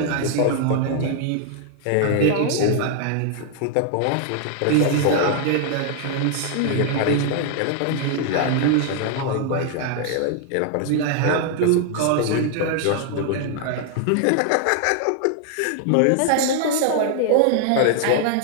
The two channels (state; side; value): different; both; correlation 0.00